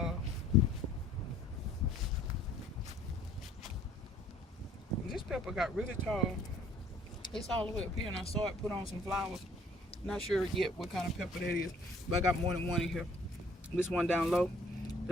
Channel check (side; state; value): both; normal; correlation 0.58